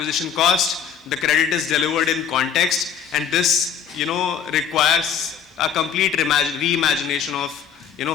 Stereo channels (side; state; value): right; quieter; 7.8 dB